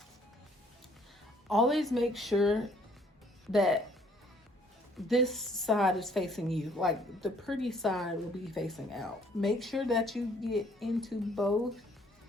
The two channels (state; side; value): normal; both; correlation 0.61